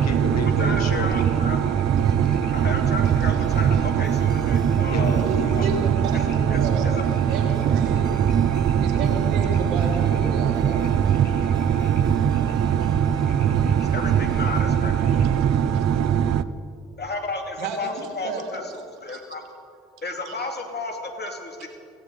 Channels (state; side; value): quieter; left; 7.1 dB